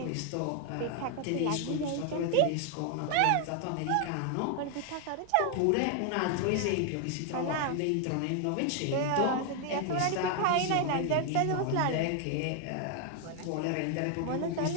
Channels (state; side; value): different; both; correlation 0.00